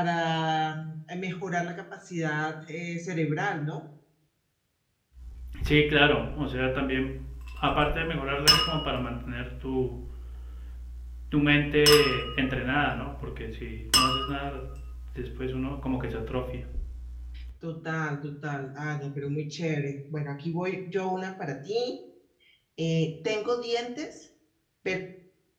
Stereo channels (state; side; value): identical; both; correlation 1.00